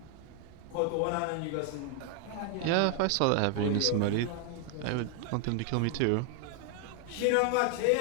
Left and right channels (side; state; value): both; different; correlation 0.00